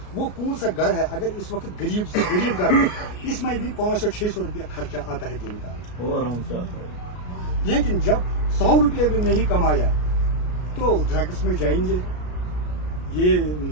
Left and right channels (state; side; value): late; right; 33 ms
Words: वो कौन सा घर है, अगर इस वक्त गरीब से गरीब घर है, इसमें भी 500-600 रुपया खर्चा आता है दिन का, वो आराम से आता है। लेकिन जब 100 रुपये भी नहीं कमाया तो ड्रग्स में जाएंगे, ये